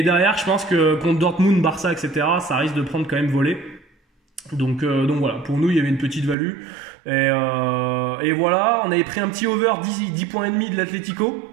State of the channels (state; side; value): drops out; left; at 6.4 s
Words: derrière, je pense que contre Dortmund, Barça, etc., ça risque de prendre quand même volée. Donc voilà, pour nous il y avait une petite value. Et voilà, on avait pris un petit over 10 points et demi de l'Atlético.